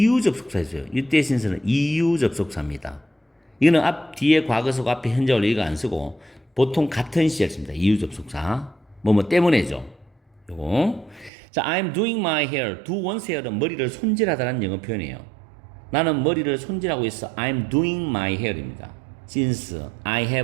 접속사였어요. 이때 since는 이유 접속사입니다. 이거는 뒤에 과거속 앞에 현재 완료 이거 안 쓰고 보통 같은 시제를 씁니다. 이유 접속사. 뭐뭐 때문에죠. 요거. 자, I'm doing my hair. do one's hair은 머리를 손질하다는 영어 표현이에요. 나는 머리를 손질하고 있어. I'm doing my hair입니다. Since I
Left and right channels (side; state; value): left; drops out; at 11.3 s